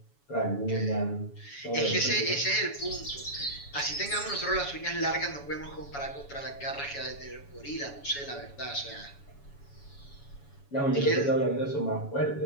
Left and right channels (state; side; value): late; right; 7.1 ms